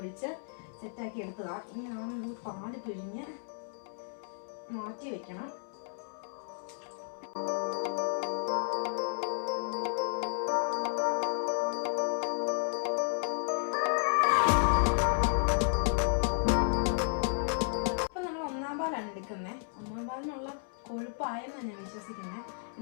സെറ്റാക്കി എടുത്തതാണ്. ഇനി പാല് പിഴിഞ്ഞ് മാറ്റി വെക്കണം. എടുക്കുന്നത് 1-ാം പാലിനുള്ള കൊഴുപ്പായെന്നാണ് ഞാൻ വിശ്വസിക്കുന്നത്.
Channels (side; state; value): right; silent; 56 dB below the other